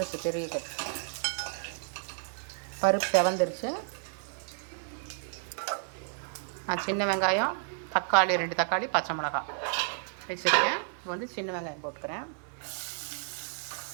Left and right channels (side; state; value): left; silent; 57 dB below the other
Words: பெரிய கட்டு. பருப்பு செவந்துருச்சு. சின்ன வெங்காயம், தக்காளி 2 தக்காளி, பச்சை மிளகாய் வச்சுருக்கேன். வந்து சின்ன வெங்காயம் போட்டுக்கிறேன்.